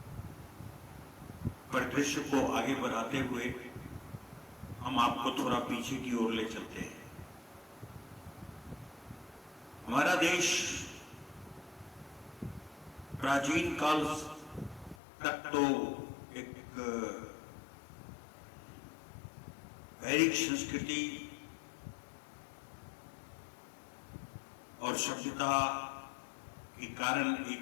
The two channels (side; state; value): right; drops out; at 15.0 s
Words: परिदृश्य को आगे बढ़ाते हुए हम आपको थोड़ा पीछे की ओर ले चलते हैं। हमारा देश प्राचीन काल तक तो एक वैदिक संस्कृति और सभ्यता के कारण